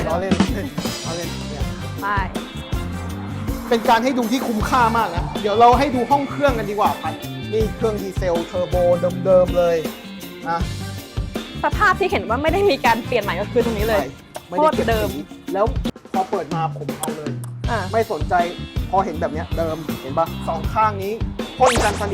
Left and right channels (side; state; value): both; identical; correlation 1.00